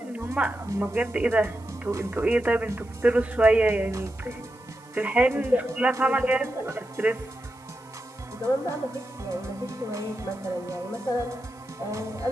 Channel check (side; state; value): right; noise; hiss, 28 dB below the sound